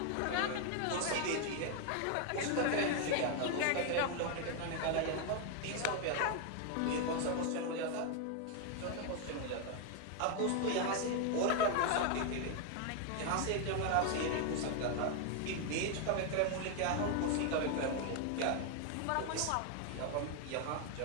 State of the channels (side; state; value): both; different; correlation 0.01